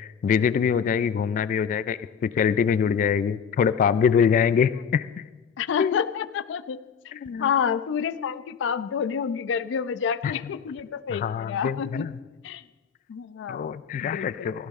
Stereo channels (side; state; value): right; quieter; 6.9 dB